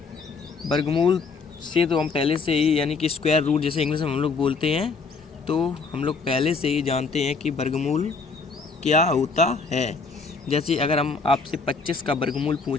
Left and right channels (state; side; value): quieter; right; 4.6 dB